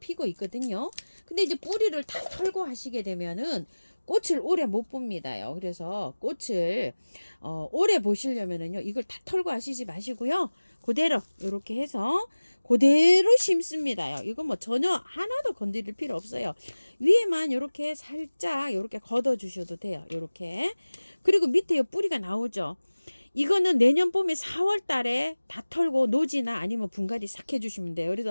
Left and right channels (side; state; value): both; inverted; correlation -1.00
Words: 있거든요. 근데 이제 뿌리를 다 털고 하시게 되면은 꽃을 오래 못 봅니다요. 그래서 꽃을 오래 보시려면은요, 이걸 다 털고 하시지 마시고요. 그대로 이렇게 해서 그대로 심습니다요. 이거 뭐 전혀 하나도 건드릴 필요 없어요. 위에만 이렇게 살짝 이렇게 걷어 주셔도 돼요. 이렇게. 그리고 밑에 요 뿌리가 나오죠. 이거는 내년 봄에 4월 달에 다 털고 노지나 아니면 분갈이 싹 해주시면 돼요.